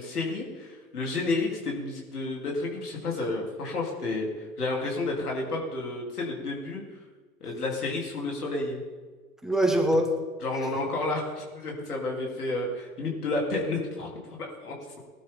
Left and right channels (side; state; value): both; normal; correlation 0.54